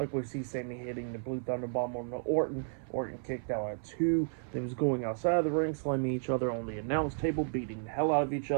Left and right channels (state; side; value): silent; left; 56 dB below the other